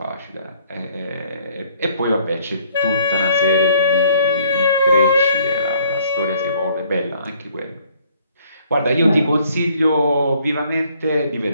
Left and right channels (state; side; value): inverted; both; correlation -0.62